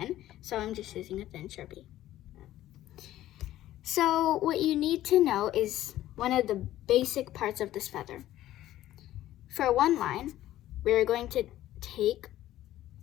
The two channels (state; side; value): quieter; right; 13.9 dB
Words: so I'm just using a thin Sharpie. So what you need to know is one of the basic parts of this feather. For one line, we're going to take